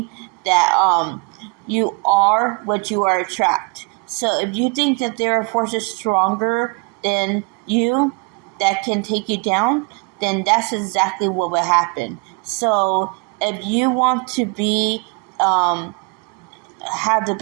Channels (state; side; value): quieter; left; 32.4 dB